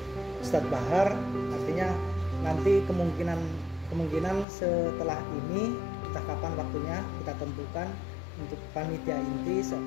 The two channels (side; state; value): right; drops out; at 4.5 s